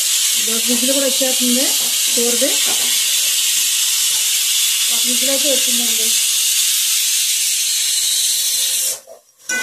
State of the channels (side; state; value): both; identical; correlation 1.00